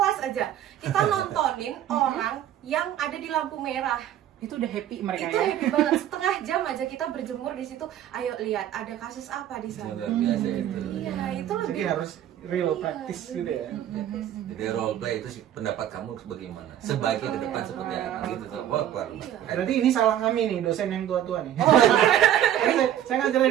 aja. Kita nontonin orang yang ada di lampu merah. Itu udah happy mereka. Itu happy banget. Setengah jam aja kita berjemur di situ. Ayo lihat ada kasus apa di sana. Biasa itu. Iya, itu lebih. Jadi harus real practice gitu ya. Jadi role play itu sih, pendapat kamu bagaimana? Sebaiknya ke depan seperti apa gitu tuh. Wah, berarti ini salah kami nih, dosen yang tua-tua nih. Saya ngajar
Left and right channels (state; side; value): quieter; left; 11.2 dB